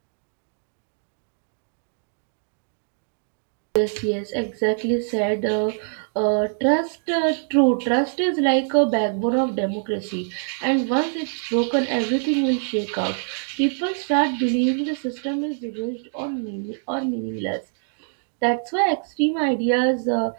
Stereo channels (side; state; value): left; silent; digital silence